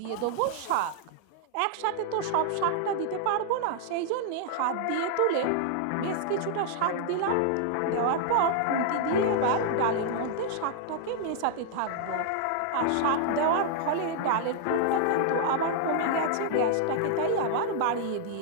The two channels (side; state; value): both; different; correlation -0.01